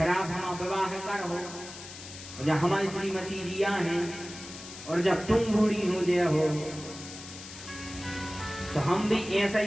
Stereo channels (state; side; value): noise; left; hiss, 13 dB below the sound